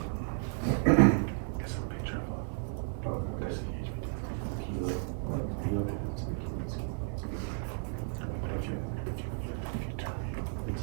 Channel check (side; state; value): left; silent; 56 dB below the other